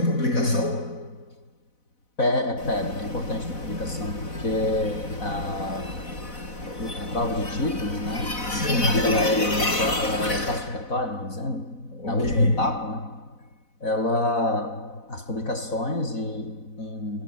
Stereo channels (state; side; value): late; right; 4.0 ms